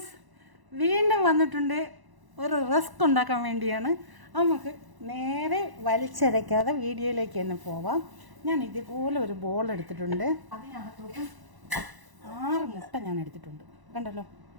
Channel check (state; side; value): late; left; 1.0 ms